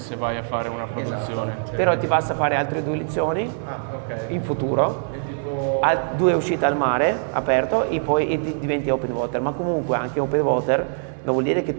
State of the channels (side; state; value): left; silent; 60 dB below the other